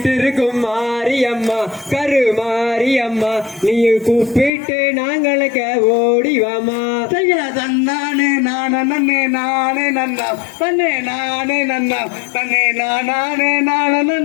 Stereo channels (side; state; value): right; drops out; at 4.5 s